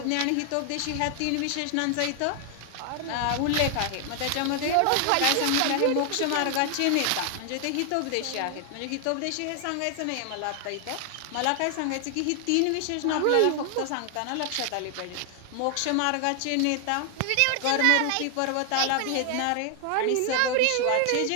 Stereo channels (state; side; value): different; both; correlation 0.00